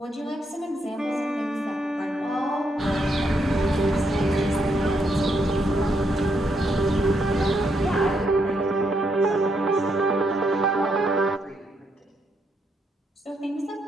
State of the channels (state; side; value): normal; both; correlation 0.77